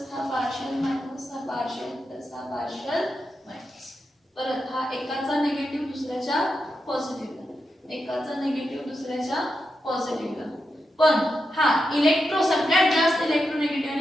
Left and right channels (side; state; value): both; normal; correlation 0.87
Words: हा पार्शियल मायनस, हा पार्शियल प्लस, हा पार्शियल मायनस. परत हा एकाचा निगेटिव्ह दुसऱ्याच्या पॉझिटिव्हला, एकाचा निगेटिव्ह दुसऱ्याच्या पॉझिटिव्हला. पण हा इलेक्ट्रो सगळ्यात जास्त इलेक्ट्रोनेगेटिव्ह